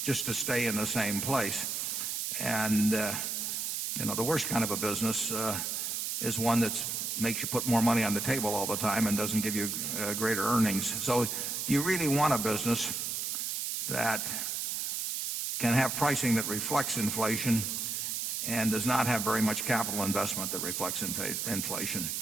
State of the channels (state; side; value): noise; right; hiss, 1 dB below the sound